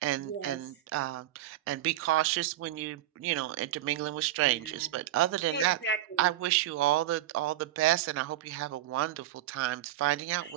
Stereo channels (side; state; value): left; quieter; 13.8 dB